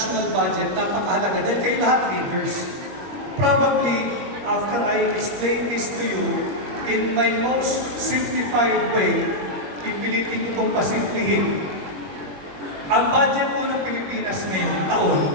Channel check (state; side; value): late; left; 21 ms